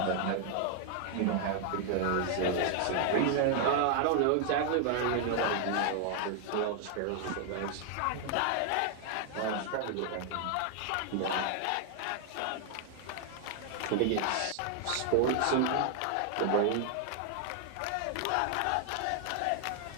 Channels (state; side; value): different; both; correlation 0.00